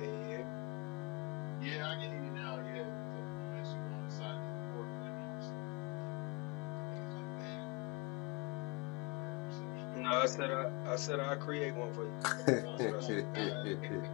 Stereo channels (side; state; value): right; quieter; 29.1 dB